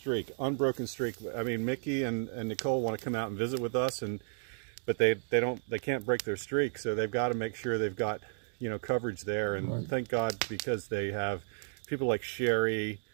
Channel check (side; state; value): left; silent; digital silence